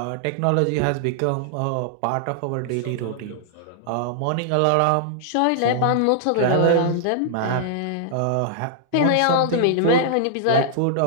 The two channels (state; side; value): different; both; correlation -0.01